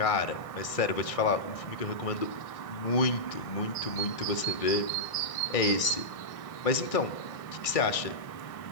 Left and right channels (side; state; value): right; late; 1.6 ms